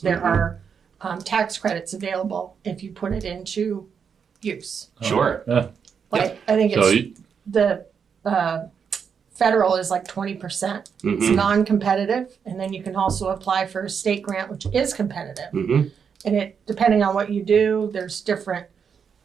there are tax credits available if you put it into use. Sure. Yeah. Like, I think So it's the federal is like 20%. It's Mhm. non-competitive, and then you can also apply for a state grant, which is competitive. Mhm. And it, depending on what you do, there's different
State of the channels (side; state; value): left; quieter; 6.7 dB